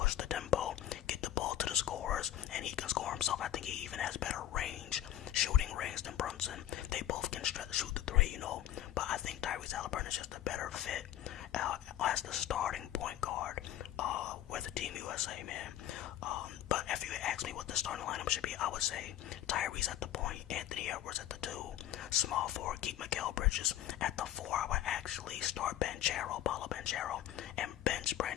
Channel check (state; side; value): quieter; right; 12.4 dB